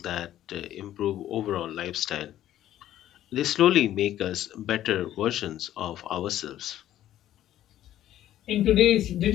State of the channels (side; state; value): right; quieter; 12.6 dB